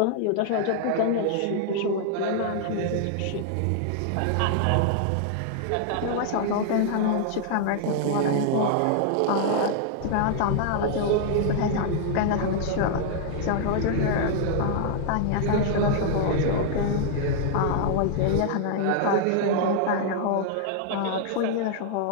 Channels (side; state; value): both; different; correlation -0.01